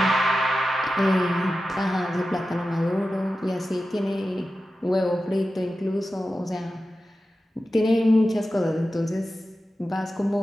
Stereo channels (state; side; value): normal; both; correlation 0.93